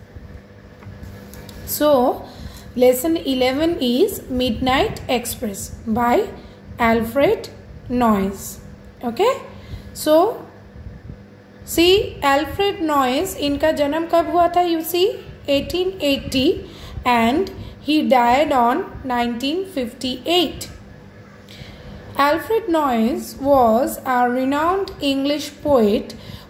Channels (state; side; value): identical; both; correlation 1.00